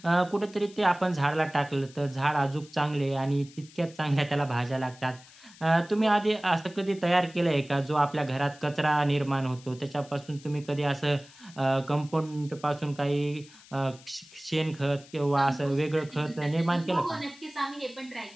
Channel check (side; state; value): left; noise; hiss, 22 dB below the sound